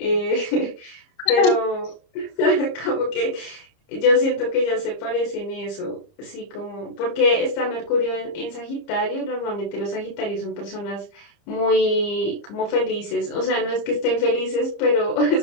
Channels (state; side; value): late; right; 30 ms